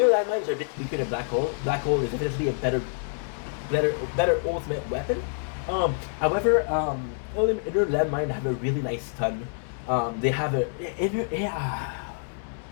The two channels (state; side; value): silent; right; 60 dB below the other